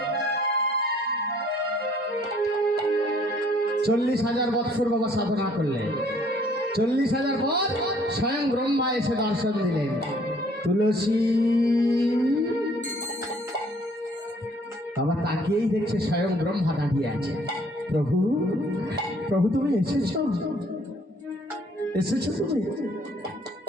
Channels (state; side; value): normal; both; correlation 0.60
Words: 40,000 বৎসর বাবা সাধনা করলেন। 40,000 পর স্বয়ং ব্রহ্মা এসে দর্শন দিলেন। তুলসী বাবা তাকিয়েই দেখছে স্বয়ং ব্রহ্মা দাঁড়িয়ে আছে। প্রভু, প্রভু তুমি এসেছো? এসেছো তুমি?